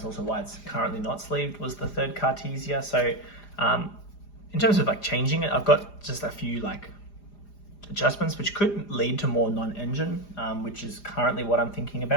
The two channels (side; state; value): right; late; 4.9 ms